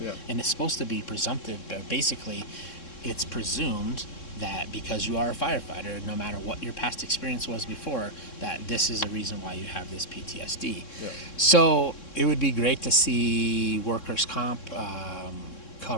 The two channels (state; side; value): late; right; 3.6 ms